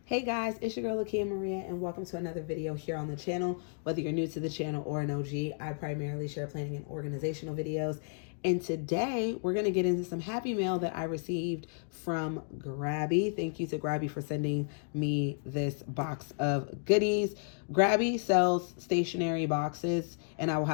Hey guys, it's your girl Lakia Maria and welcome to another video here on the channel. Whether you're new to the channel or an OG, I primarily share planning and organizational videos. And today we're going to get into some happy mail that I received from Grabie. Thank you to Grabie for sending me this box of goodies. Grabie sells stationery boxes and I will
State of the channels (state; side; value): silent; right; digital silence